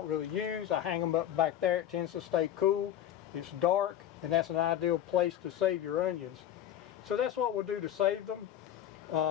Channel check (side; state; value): right; quieter; 11.0 dB